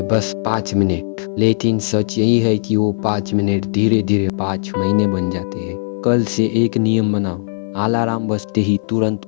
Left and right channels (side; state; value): right; silent; 57 dB below the other